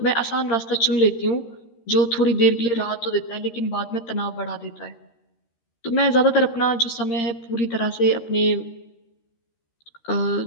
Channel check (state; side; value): late; right; 13 ms